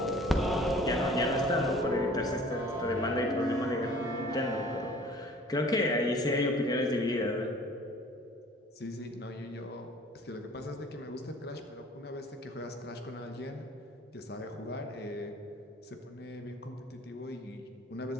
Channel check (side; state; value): both; normal; correlation 0.49